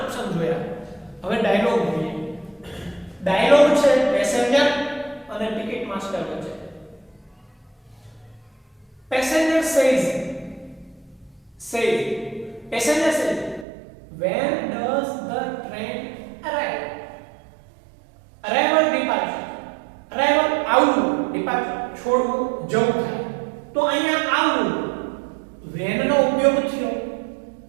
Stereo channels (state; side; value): drops out; left; at 13.7 s